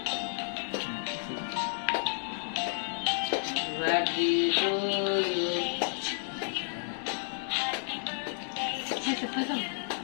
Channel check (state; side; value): silent; right; digital silence